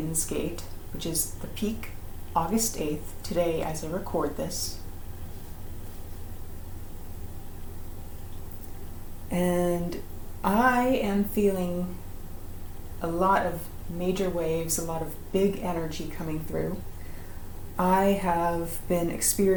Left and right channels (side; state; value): both; identical; correlation 1.00